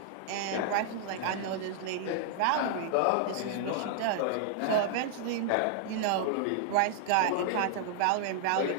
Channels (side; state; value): both; different; correlation 0.00